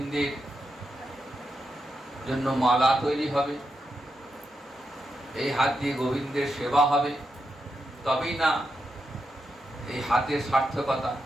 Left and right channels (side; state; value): both; normal; correlation 0.85